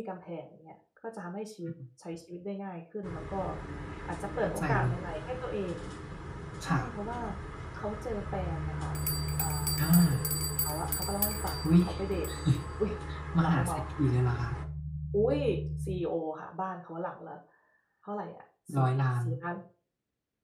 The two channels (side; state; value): both; identical; correlation 1.00